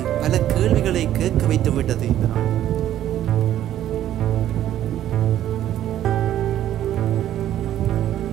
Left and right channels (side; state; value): left; quieter; 12.0 dB